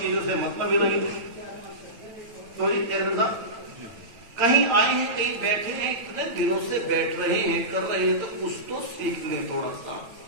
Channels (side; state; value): left; late; 8.6 ms